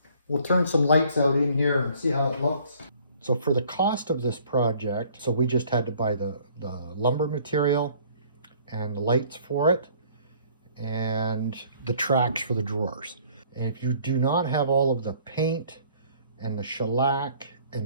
We'll turn some lights out in here and see how it looks. So for the cost of this project, so we just had to buy the lumber material and the lights for it and the tracks for the drawers. And if you do not have all of the paint and the shellac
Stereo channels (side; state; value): both; inverted; correlation -0.57